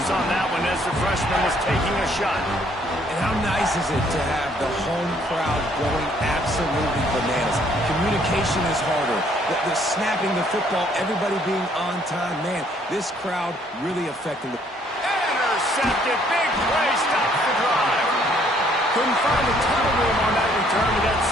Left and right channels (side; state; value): both; normal; correlation 0.64